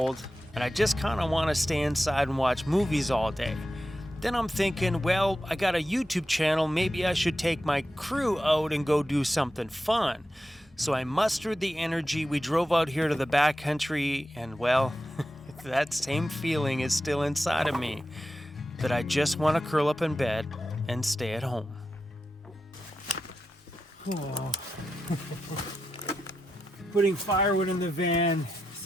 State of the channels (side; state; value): both; normal; correlation 0.90